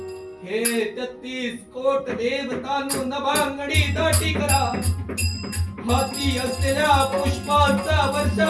हे 33 कोट देवतांनो नभांगडी दाटी करा हाती असलेल्या पुष्पांचा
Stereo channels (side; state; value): both; identical; correlation 1.00